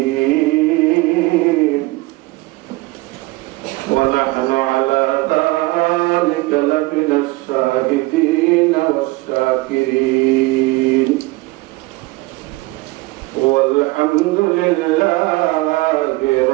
ওয়া নাহনু আলা যালিকা লামিনাশ শাহিদিন ওয়াশ-শাকিরিন ওয়ালহামদুলিল্লাহি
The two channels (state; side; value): quieter; left; 21.4 dB